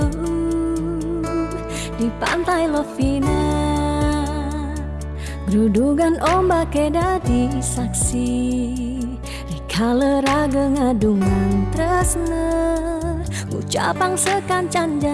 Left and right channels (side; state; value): both; identical; correlation 1.00